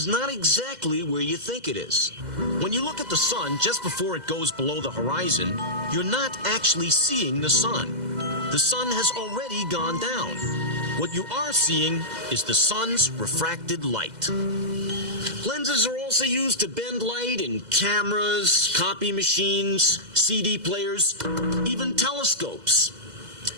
not exactly where you think it is. When you look at the sun just before it goes below the horizon, you're not actually seeing the sun. The sun has already gone down. What you are seeing is the sun's refracted light. Lenses are also used to bend light in cameras, copy machines, CD players, even telescopes.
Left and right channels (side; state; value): left; late; 2.0 ms